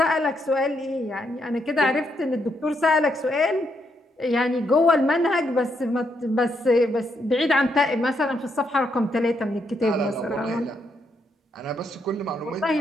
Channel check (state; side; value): normal; both; correlation 0.77